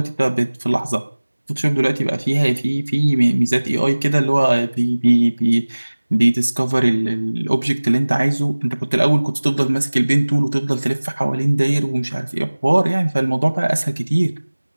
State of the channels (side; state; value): both; inverted; correlation -1.00